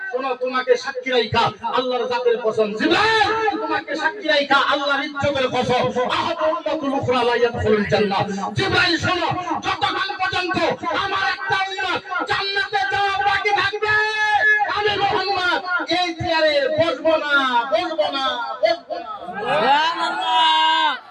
শোনো, তোমাকে সাক্ষী রাখা আল্লাহর জাতের কসম, জিবরাইল তোমাকে সাক্ষী রাখা আল্লাহর ইজ্জতের কসম, আহাদু উম্মাতুল উখরা লা ইয়াদখুলুল জান্নাহ। জিবরাইল শোনো, যতক্ষণ পর্যন্ত আমার একটা উম্মত জান্নাতে যাওয়া বাকি থাকবে, আমি মুহাম্মদ এই চেয়ারে বসবো না, বসবো না, বসবো না। সুবহানাল্লাহ।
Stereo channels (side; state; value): both; identical; correlation 1.00